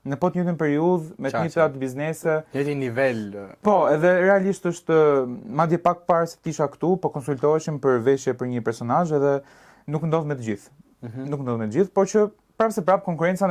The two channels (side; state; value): both; identical; correlation 1.00